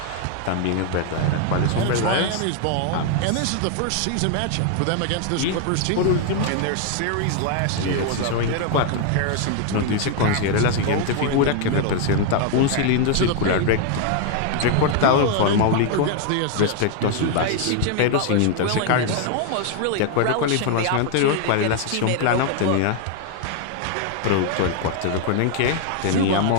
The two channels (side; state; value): both; different; correlation 0.00